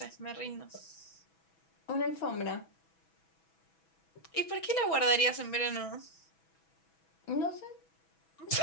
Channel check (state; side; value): late; right; 6.1 ms